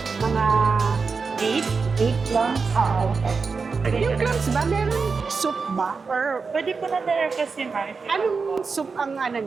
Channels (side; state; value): left; quieter; 4.8 dB